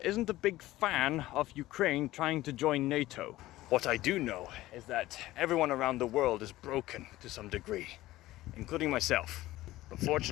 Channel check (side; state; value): right; quieter; 16.6 dB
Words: isn't a big fan of Ukraine trying to join NATO. What I do know is that everyone around the world is broken to some degree, including myself. But